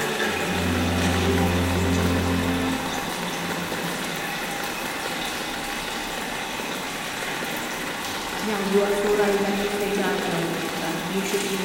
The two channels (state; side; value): identical; both; correlation 1.00